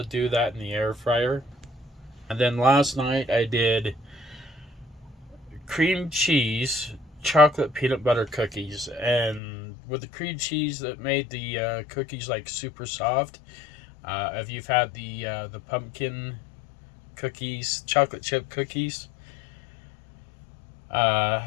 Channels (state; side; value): drops out; right; at 9.4 s